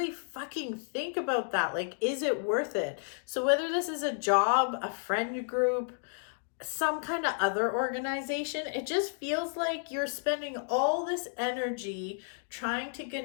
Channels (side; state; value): right; silent; digital silence